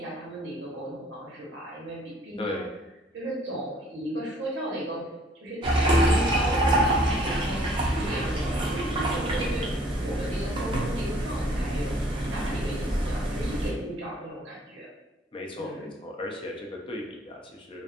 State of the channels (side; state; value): both; normal; correlation 0.59